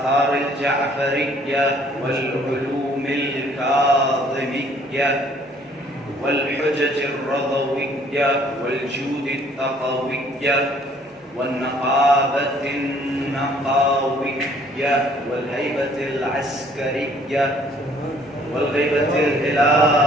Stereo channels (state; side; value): normal; both; correlation 0.60